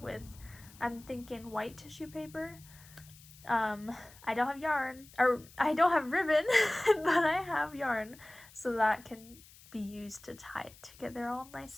I'm thinking, white tissue paper. I don't have yarn, or I don't have ribbon, but I have yarn, so that can be used to tie it together all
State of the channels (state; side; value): noise; left; hiss, 22 dB below the sound